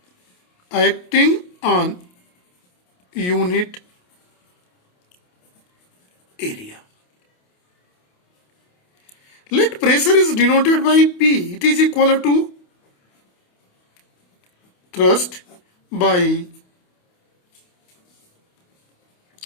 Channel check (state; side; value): late; right; 28 ms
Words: unit area. Let pressure is denoted by P. It is equal to thrust by